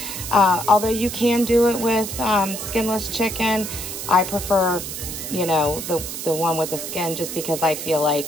Although you can do it with skinless chicken, I prefer, you know, the one with the skin just because I feel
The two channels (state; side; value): noise; right; hiss, 7 dB below the sound